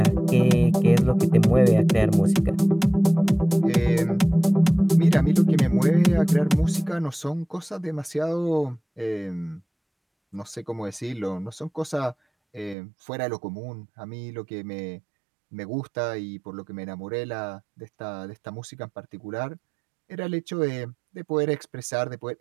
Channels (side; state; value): left; drops out; at 12.8 s